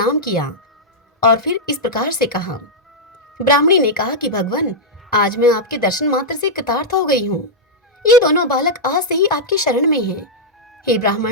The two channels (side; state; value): both; normal; correlation -0.06